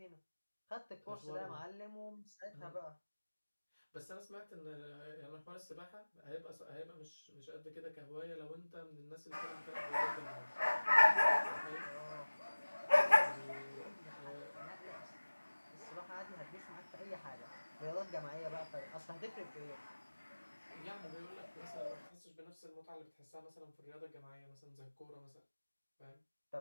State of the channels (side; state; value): both; inverted; correlation -1.00